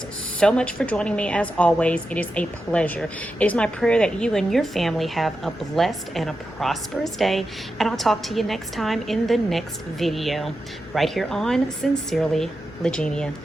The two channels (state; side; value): normal; both; correlation 0.89